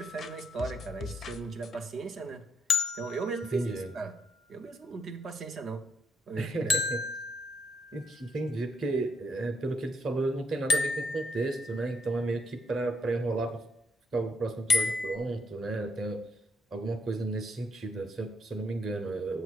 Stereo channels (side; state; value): both; normal; correlation 0.72